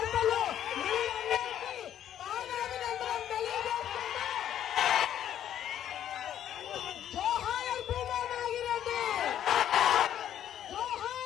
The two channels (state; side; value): quieter; right; 10.7 dB